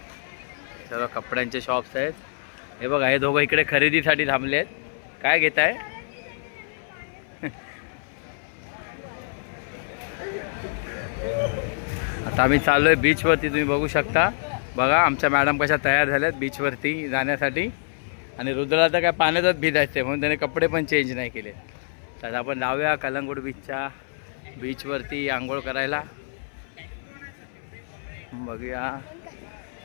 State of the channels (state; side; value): silent; right; 58 dB below the other